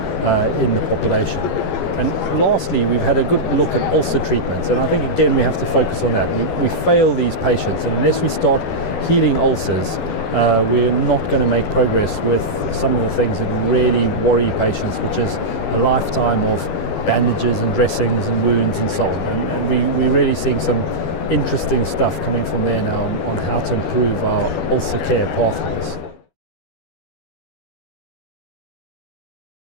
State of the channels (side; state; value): right; late; 12 ms